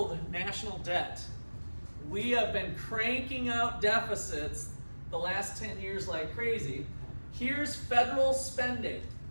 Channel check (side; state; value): both; inverted; correlation -1.00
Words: national debt. We have been cranking out deficits the last 10 years like crazy. Here's federal spending,